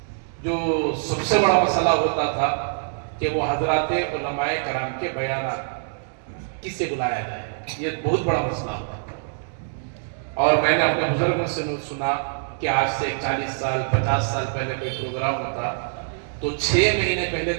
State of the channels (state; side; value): silent; left; digital silence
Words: جو سب سے بڑا مسئلہ ہوتا تھا کہ وہ حضرات علماء کرام کے بیانات کس سے بلایا جائے، یہ بہت بڑا مسئلہ ہوتا تھا۔ اور میں نے اپنے بزرگوں سے سنا کہ آج سے 40 سال 50 سال پہلے کوئی پروگرام ہوتا تو 6 مہینے پہلے